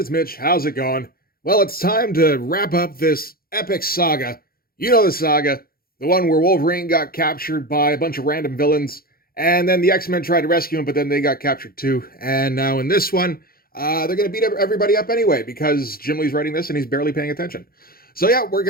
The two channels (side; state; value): right; late; 0.43 ms